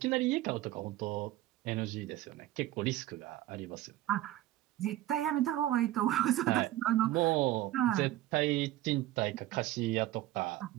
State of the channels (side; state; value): left; quieter; 15.0 dB